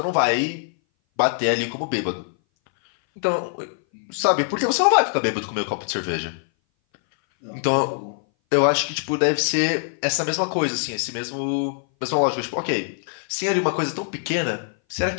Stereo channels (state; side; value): silent; right; 59 dB below the other